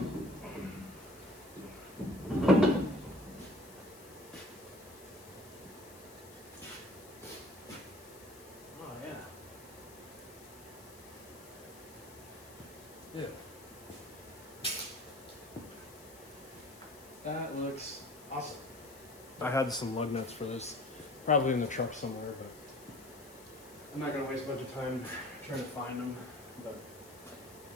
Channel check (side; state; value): left; noise; hiss, 19 dB below the sound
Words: Yeah. That looks awesome. I had some lug nuts for this, probably in the truck somewhere, but I'm not gonna waste a bunch of time trying to find them. But